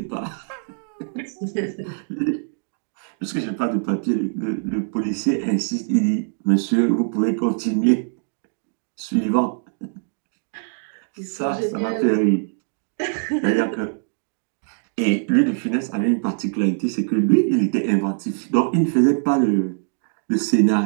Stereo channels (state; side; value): silent; left; digital silence